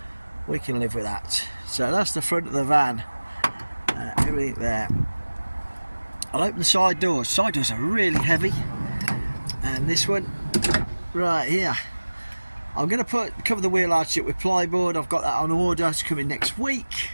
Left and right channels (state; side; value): inverted; both; correlation -1.00